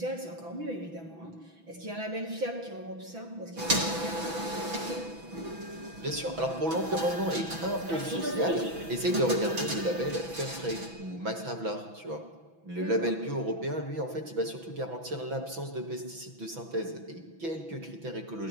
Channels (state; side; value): late; left; 6.0 ms